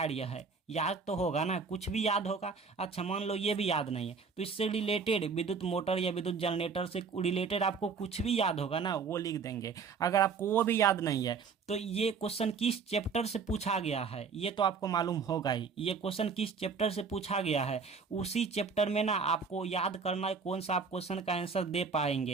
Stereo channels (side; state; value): left; quieter; 5.4 dB